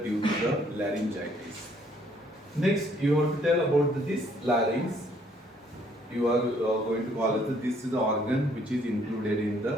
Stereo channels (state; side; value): normal; both; correlation 0.64